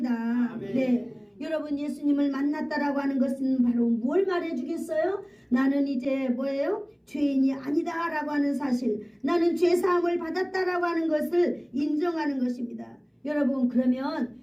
아멘. 네. 여러분 예수님을 만났다라고 하는 것은 바로 뭘 말해주겠어요? 나는 이제 뭐예요? 죄인이 아니다라고 하는 사실, 나는 죄사함을 받았다라고 하는 것을 인정하는 것입니다. 여러분 그러면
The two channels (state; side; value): identical; both; correlation 1.00